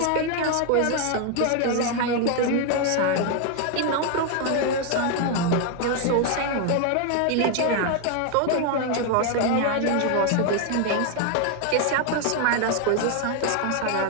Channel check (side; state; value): both; different; correlation 0.01